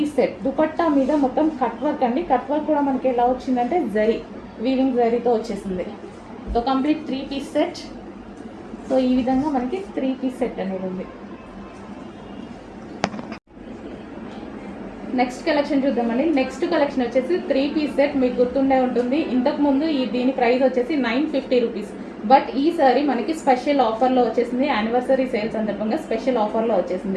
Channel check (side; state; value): both; identical; correlation 1.00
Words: సెట్. దుపట్టా మీద మొత్తం కట్ వర్క్ అండి. కట్ వర్క్ కూడా మనకి ఎలా వచ్చిందంటే జరీ, వీవింగ్ జరీతో వచ్చేసింది. So complete 3 piece set. So ఈ విధంగా మనకి 3 పీస్ సెట్ అనేది ఉంది. నెక్స్ట్ కలెక్షన్ చూద్దామండి. నెక్స్ట్ కలెక్షన్ వచ్చేసి 3 పీస్ సెట్. మీకు గుర్తుండే ఉంటుంది, ఇంతకుముందు దీని ప్రైస్ వచ్చేసి 950 రూపీస్. బట్ ఈ సారీ మనకి స్పెషల్ ఆఫర్లో వచ్చేసింది, యానివర్సరీ సేల్ సందర్భంగా స్పెషల్ ఆఫర్లో